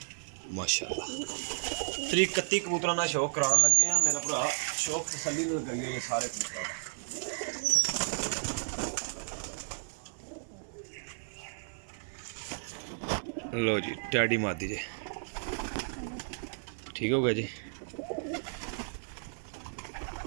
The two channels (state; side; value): silent; left; digital silence